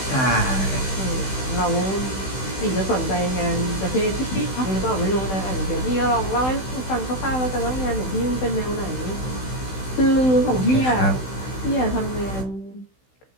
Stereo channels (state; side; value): late; right; 16 ms